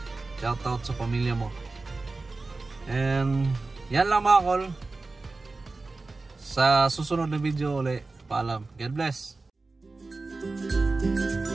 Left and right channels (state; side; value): quieter; left; 3.6 dB